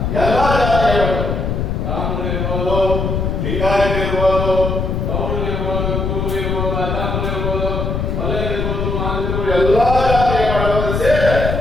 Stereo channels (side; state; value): left; noise; rumble, 1 dB below the sound